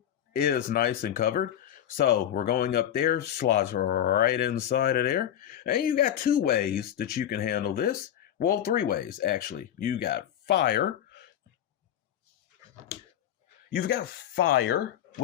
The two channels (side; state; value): right; quieter; 10.6 dB